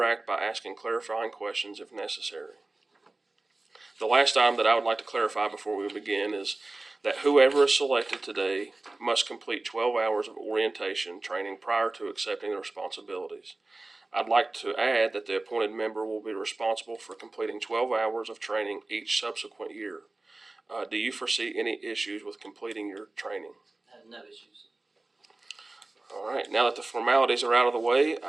by asking clarifying questions if necessary. The last item that I would like to clarify before we begin is that whoever is selected today must complete 12 hours of orientation training prior to accepting the responsibilities. I'd like to add that the appointed member will be responsible for completing 12 hours of training each subsequent year. Do you foresee any issues with completing your training? I have no issues. All right, now that the formalities are out of the way,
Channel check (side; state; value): left; quieter; 3.1 dB